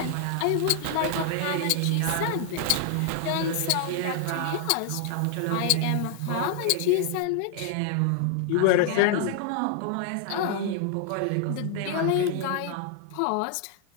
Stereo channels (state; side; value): different; both; correlation 0.00